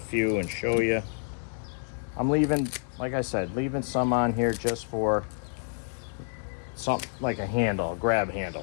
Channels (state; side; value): silent; right; digital silence